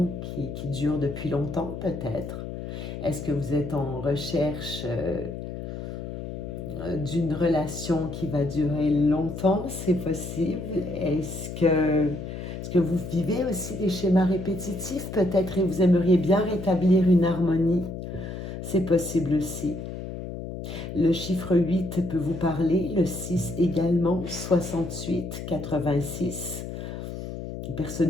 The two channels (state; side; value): noise; left; hum, 8 dB below the sound